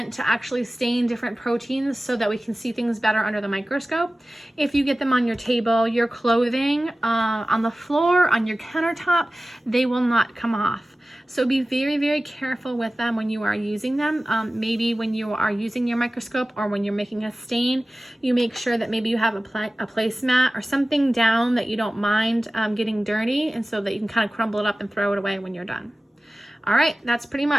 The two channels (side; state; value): both; normal; correlation 0.96